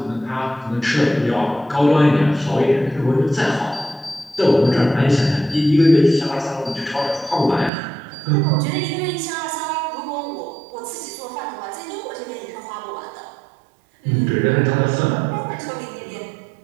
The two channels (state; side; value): drops out; left; at 7.7 s